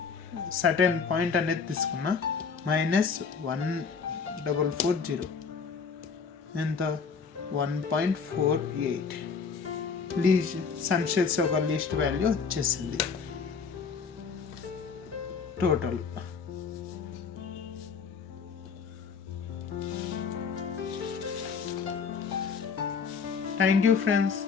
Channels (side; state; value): right; quieter; 5.6 dB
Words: సర్టెన్ పాయింట్ అనేది తీసుకున్నా -1440 ఎంత? 1.48. సన్షెట్స్ ఒక లీస్ట్ వాల్యూ వచ్చేసింది టోటల్. థ్యాంక్ యూ ఫ్రెండ్స్,